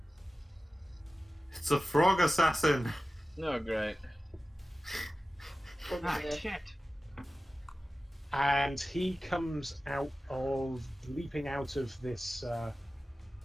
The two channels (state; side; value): normal; both; correlation 0.96